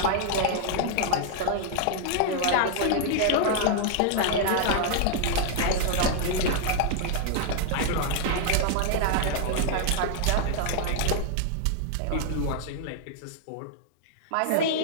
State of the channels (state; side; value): different; both; correlation 0.00